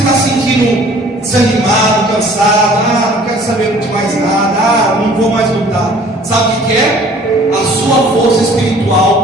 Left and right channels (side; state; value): both; normal; correlation 0.52